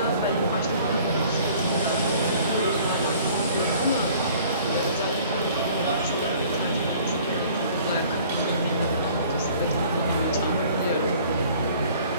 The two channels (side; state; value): both; inverted; correlation -0.53